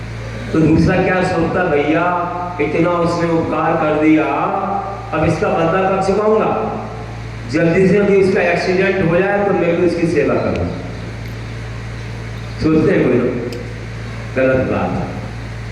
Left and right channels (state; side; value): identical; both; correlation 1.00